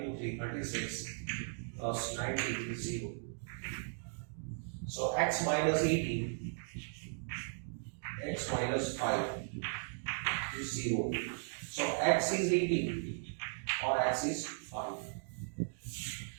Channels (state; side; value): silent; left; digital silence